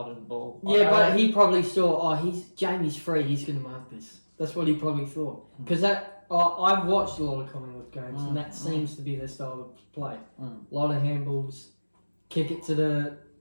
of the ball. Yeah, but he probably saw, Jamie's free, he's going to mark this. That's what he probably thought. Because I've watched a lot of Collingwood games, and that seems to be their style of play. A lot of handballs, kick it to the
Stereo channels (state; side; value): inverted; both; correlation -1.00